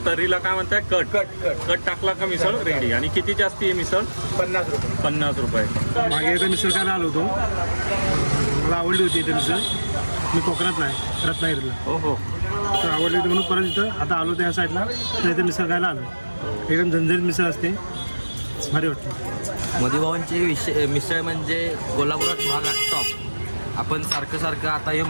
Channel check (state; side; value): inverted; both; correlation -1.00